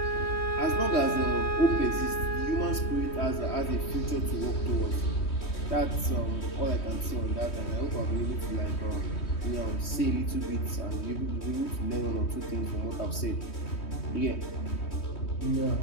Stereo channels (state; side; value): late; right; 3.2 ms